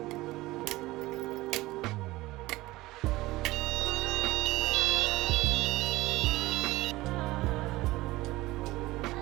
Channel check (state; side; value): quieter; left; 19.0 dB